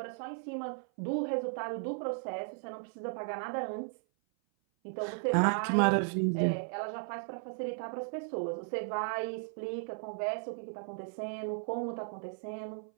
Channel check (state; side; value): silent; left; 54 dB below the other